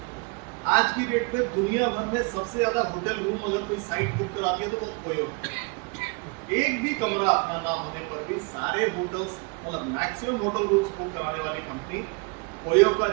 आज की डेट पे दुनिया भर में सबसे ज्यादा होटल रूम अगर कोई साइट बुक कराती है तो वो ओयो। एक भी कमरा अपना ना होने पर भी सारे होटल्स, मतलब मैक्सिमम होटल रूम्स बुक कराने वाली कंपनी ओयो का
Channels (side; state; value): left; quieter; 30.3 dB